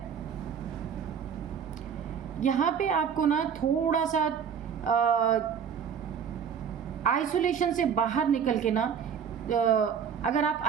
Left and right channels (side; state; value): left; quieter; 7.5 dB